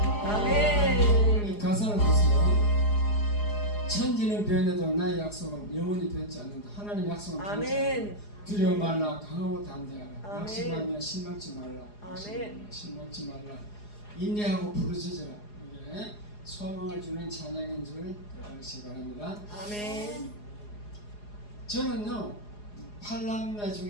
아멘 가사를 보세요. 천지는 변해도 나의 약속은 영원히 변치 않는다. 하나님 약속은 변치 않는다. 아멘 두려워 말라 강하고 담대하라 아멘. 낙심하며 실망치 말라 아멘. 실망치 말라 인내하고 부르짖으라. 이게 소망을 주는 찬양인 줄 알으시기 바랍니다. 아멘 저는요 팔남매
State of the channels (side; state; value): right; late; 4.8 ms